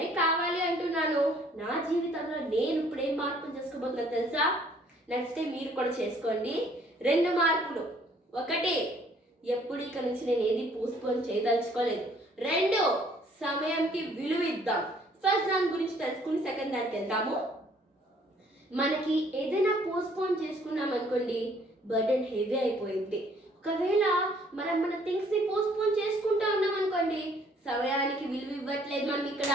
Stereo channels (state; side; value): normal; both; correlation 0.61